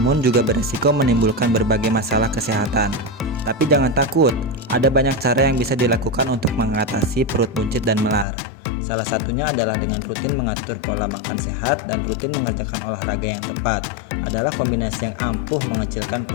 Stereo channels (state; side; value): drops out; right; at 8.2 s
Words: juga berisiko menimbulkan berbagai masalah kesehatan. Tapi jangan takut, ada banyak cara yang bisa dilakukan untuk mengatasi perut buncit dan melar. Salah satunya adalah dengan rutin mengatur pola makan sehat dan rutin mengerjakan olahraga yang tepat. Adalah kombinasi yang ampuh mengecilkan